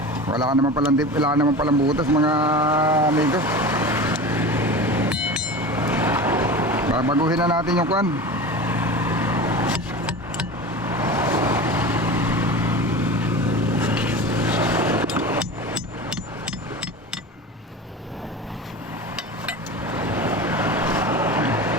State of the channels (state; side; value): normal; both; correlation 0.31